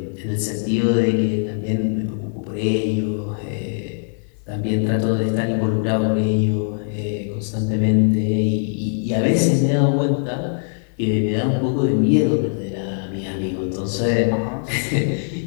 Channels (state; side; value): silent; right; digital silence